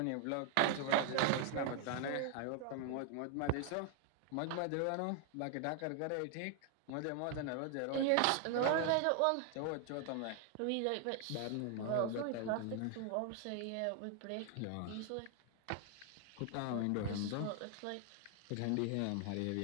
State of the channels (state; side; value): different; both; correlation 0.00